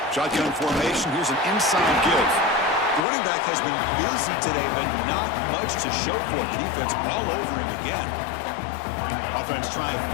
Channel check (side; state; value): right; drops out; at 3.1 s